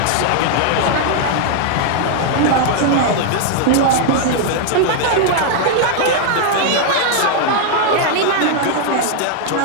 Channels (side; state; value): both; different; correlation 0.00